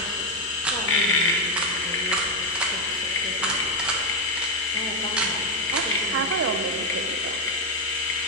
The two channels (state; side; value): normal; both; correlation 0.07